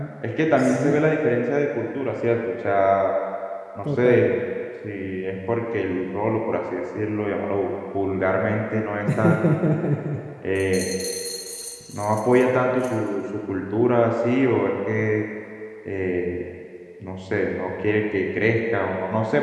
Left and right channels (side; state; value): both; identical; correlation 1.00